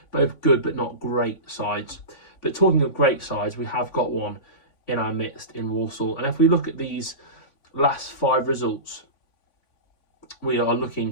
Both good but not great sides. But talking of great sides, we have got one in our midst in Walsall. And if we look at these last 5 results, we are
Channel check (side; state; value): right; late; 3.5 ms